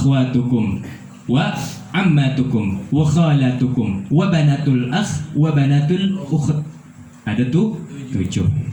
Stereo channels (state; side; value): identical; both; correlation 1.00